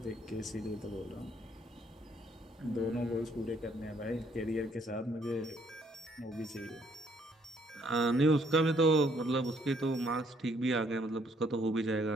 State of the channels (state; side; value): normal; both; correlation 0.67